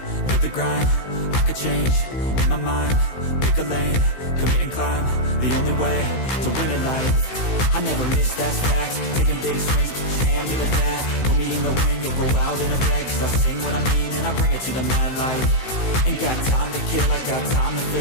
live the grind, I could change, in my mind, pick a lane, commit and climb, the only way to win it life. I never miss, that's fact, taking big swings, put your hand to the bat, put me in the ring, you'll go out in a bag, cause I sing what I mean and I bring it to the mad light. Ain't got time to kill, I got time to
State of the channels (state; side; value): late; right; 16 ms